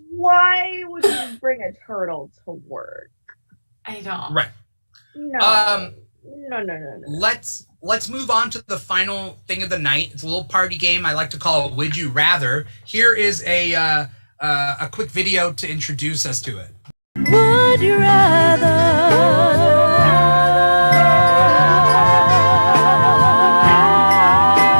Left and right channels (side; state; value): both; inverted; correlation -1.00